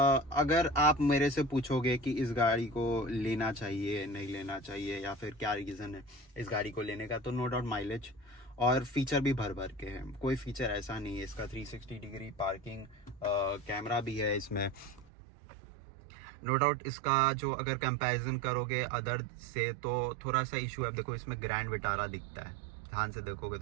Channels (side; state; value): left; drops out; at 15.1 s